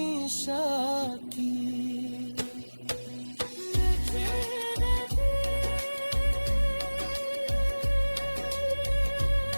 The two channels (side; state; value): both; inverted; correlation -1.00